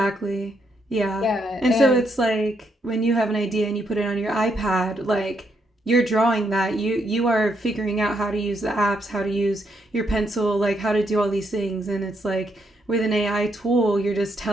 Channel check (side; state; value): both; normal; correlation 0.76